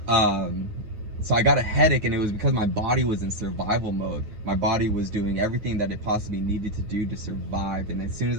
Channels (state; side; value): late; left; 9.5 ms